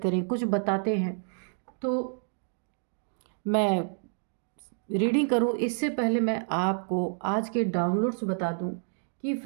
करें, कुछ बताते हैं। तो मैं रीडिंग करूं इससे पहले मैं आपको आज के डाउनलोड्स बता दूं कि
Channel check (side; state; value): left; silent; 59 dB below the other